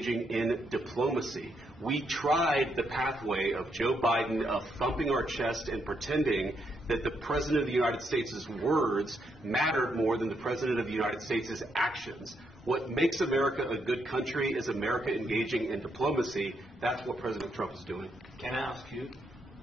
in diplomacy. We tried the pathway of Joe Biden of thumping our chest and pretending that the President of the United States' words mattered more than the President of the United States' actions. What makes America a good country is America engaging in diplomacy. That's what President Trump is doing. Can I ask you?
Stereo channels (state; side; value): normal; both; correlation 0.78